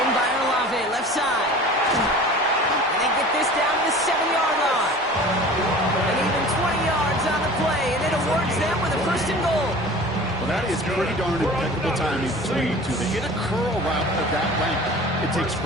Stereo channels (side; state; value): both; normal; correlation 0.41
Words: in by Olave, left side. And they get this down to the 7-yard line. And even 20 yards on the play, and it awards them with a 1st and goal. Well, that is pretty darn impeccable timing between the two. They hit a curl route of that length. It takes